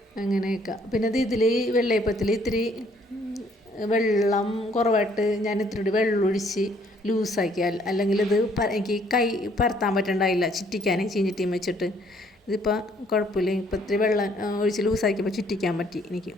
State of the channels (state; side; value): normal; both; correlation 0.64